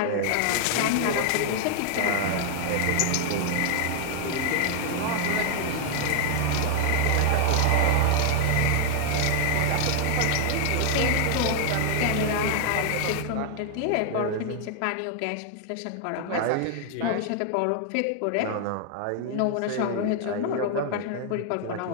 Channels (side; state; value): both; different; correlation 0.00